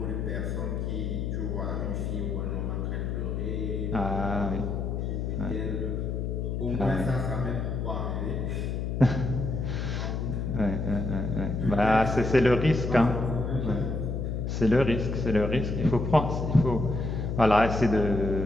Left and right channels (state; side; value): noise; left; hum, 2 dB below the sound